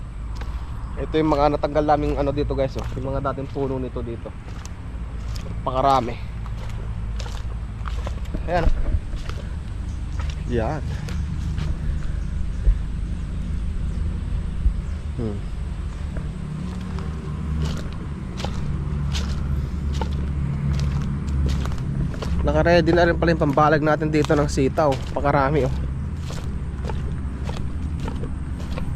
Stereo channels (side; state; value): both; identical; correlation 1.00